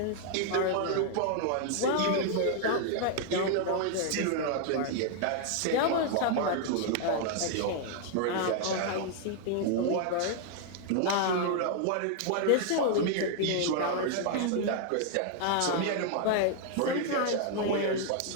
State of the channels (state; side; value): different; both; correlation 0.00